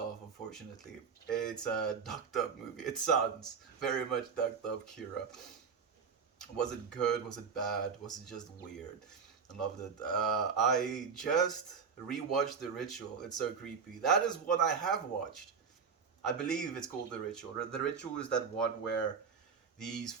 unfortunately. It's a ducked up movie. It sounds very much ducked up, Kira. Was it good? Was it bad? Was it just weird? I loved it. I just rewatched The Ritual. It's so creepy. That is what I have watched. I believe it's called The Ritual. The Ritual is that one where these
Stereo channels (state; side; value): quieter; left; 6.0 dB